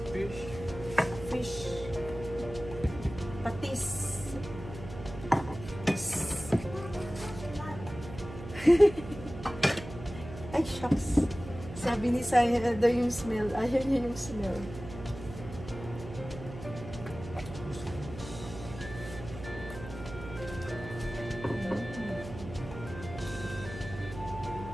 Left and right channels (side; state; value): right; noise; hum, 12 dB below the sound